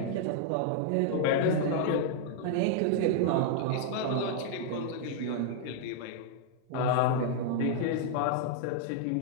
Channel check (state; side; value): different; both; correlation -0.01